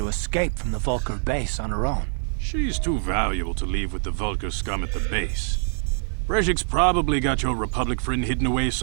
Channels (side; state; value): left; silent; 61 dB below the other